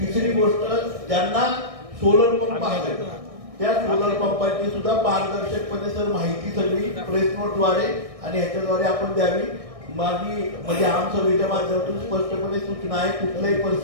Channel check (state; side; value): late; left; 1.6 ms